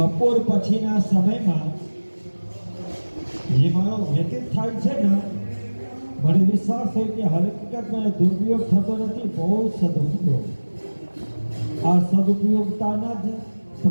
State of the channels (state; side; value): inverted; both; correlation -1.00